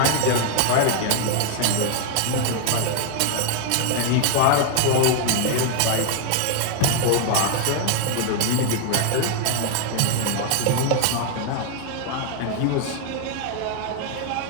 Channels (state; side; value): different; both; correlation 0.00